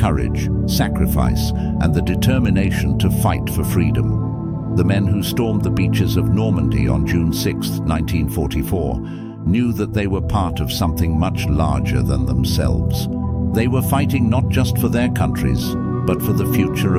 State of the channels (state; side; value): identical; both; correlation 1.00